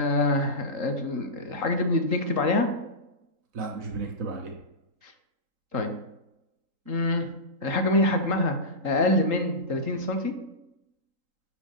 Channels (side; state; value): left; late; 3.8 ms